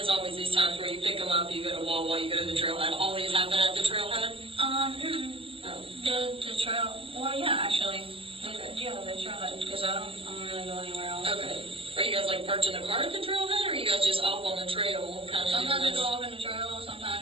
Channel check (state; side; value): late; left; 0.27 ms